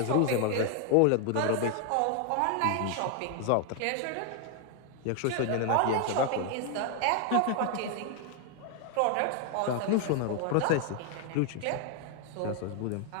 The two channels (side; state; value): both; different; correlation 0.00